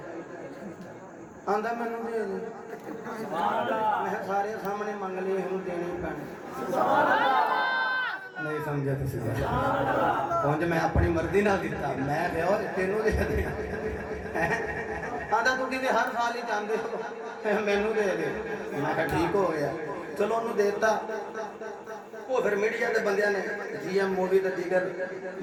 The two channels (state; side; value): identical; both; correlation 1.00